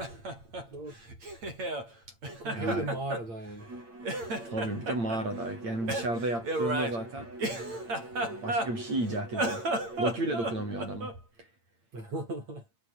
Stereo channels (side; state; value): left; late; 8.8 ms